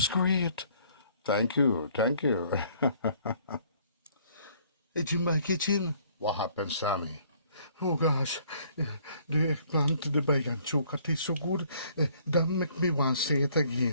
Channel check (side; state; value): both; inverted; correlation -0.61